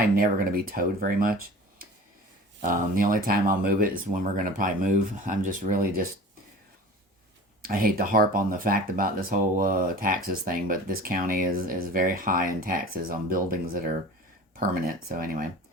never going to be towed very much. The only time I'll move it is when we're going to probably move. I'm just really I hate to harp on the fact about this whole taxes thing, but this county is very high in taxes on buildings that are permanent. So anyway,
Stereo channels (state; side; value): normal; both; correlation 0.38